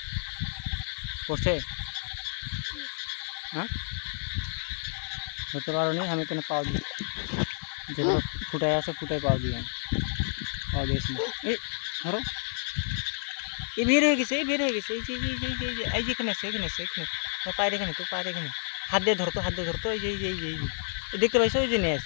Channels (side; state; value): right; silent; 58 dB below the other